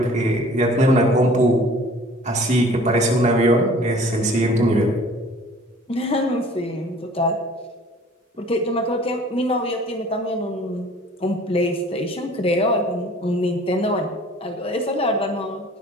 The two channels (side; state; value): both; normal; correlation 0.49